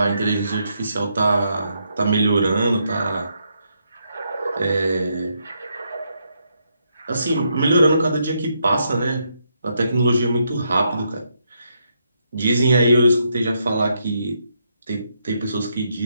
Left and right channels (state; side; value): inverted; both; correlation -0.78